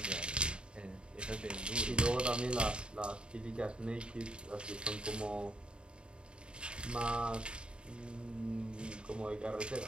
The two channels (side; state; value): left; late; 0.053 ms